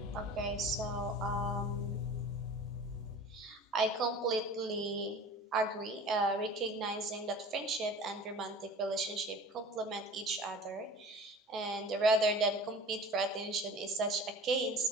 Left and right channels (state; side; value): normal; both; correlation 0.41